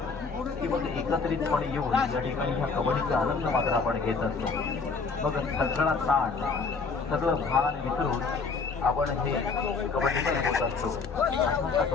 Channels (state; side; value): quieter; right; 4.6 dB